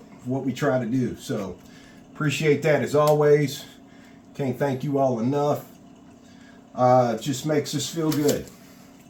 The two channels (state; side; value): identical; both; correlation 1.00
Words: what we try to do. So appreciate that as always. Can't thank you all enough. It just makes us feel good.